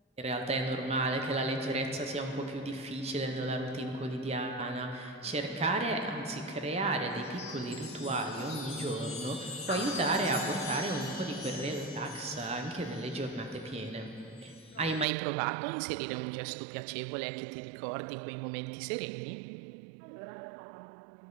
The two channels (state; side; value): drops out; left; at 15.1 s